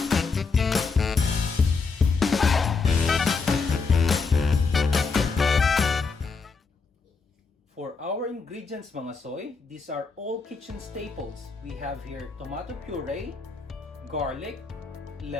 For our ingredients mga soy, these are all kitchen staples. We have here tomato puree, garlic,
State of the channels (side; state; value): right; quieter; 4.6 dB